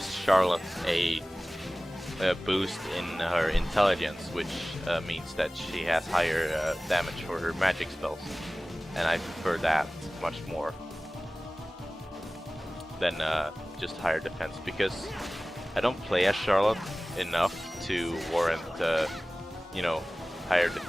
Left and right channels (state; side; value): normal; both; correlation 0.97